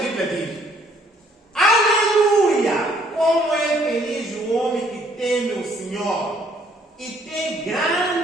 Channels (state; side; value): normal; both; correlation 0.64